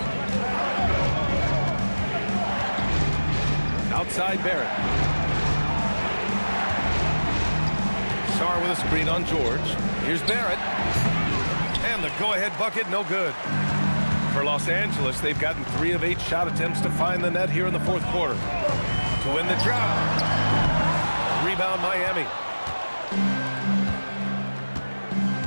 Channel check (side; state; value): both; inverted; correlation -1.00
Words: Outside Barrett. Sarr with a screen on George. Here's Barrett. And the go-ahead bucket, no good. For Los Angeles, they've gotten 3 of 8 shot attempts to find the net here in the fourth quarter. To win the job. Rebound Miami.